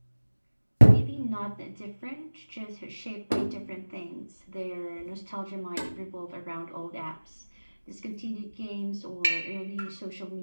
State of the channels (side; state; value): both; inverted; correlation -1.00